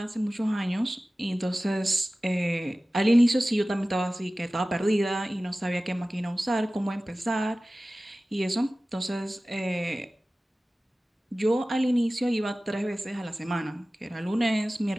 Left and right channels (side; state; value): both; normal; correlation 0.97